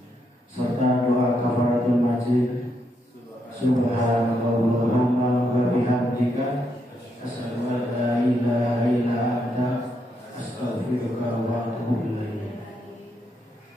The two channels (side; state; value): both; normal; correlation 0.79